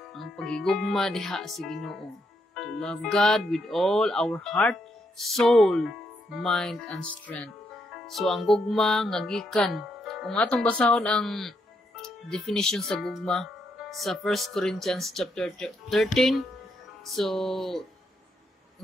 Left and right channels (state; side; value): normal; both; correlation 0.78